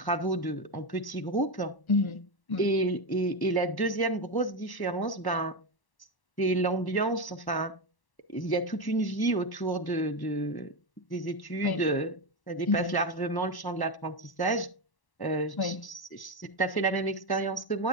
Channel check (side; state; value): right; late; 1.1 ms